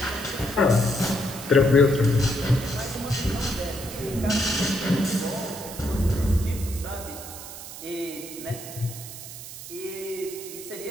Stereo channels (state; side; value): noise; right; hiss, 12 dB below the sound